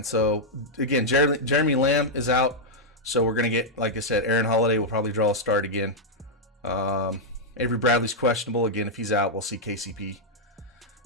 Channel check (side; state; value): both; normal; correlation -0.04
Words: So again, Jeremy Lamb is out, so we're gonna get, like I said, Aaron Holiday will probably draw a start again. Avery Bradley's questionable again. If he's out, we'll see KCP